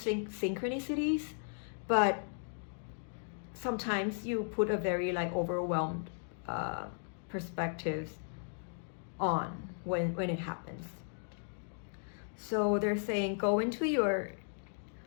but sometimes you put a very like overwhelmed perspectives on when it happens. So they're saying go into your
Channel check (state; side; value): silent; right; digital silence